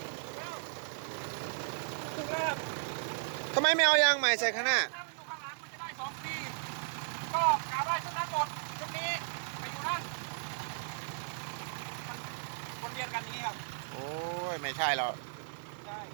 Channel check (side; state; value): left; silent; digital silence